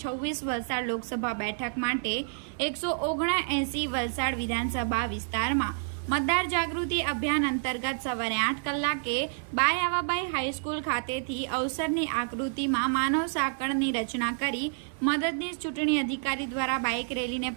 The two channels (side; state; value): left; silent; 56 dB below the other